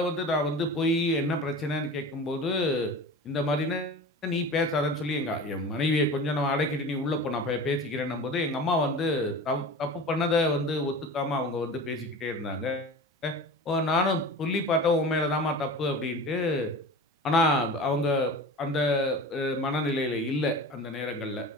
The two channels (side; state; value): both; normal; correlation 0.35